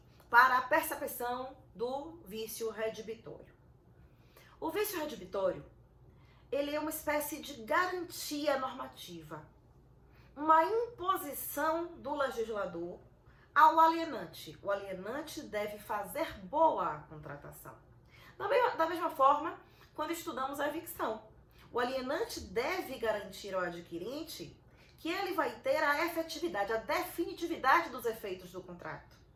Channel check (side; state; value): both; identical; correlation 1.00